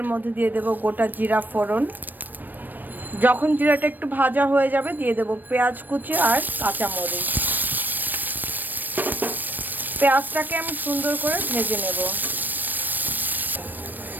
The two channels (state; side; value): late; left; 0.090 ms